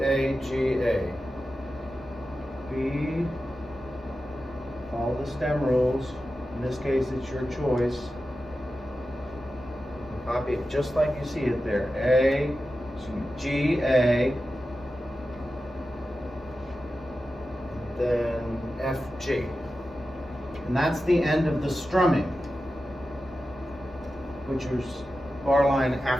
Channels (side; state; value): both; normal; correlation 0.92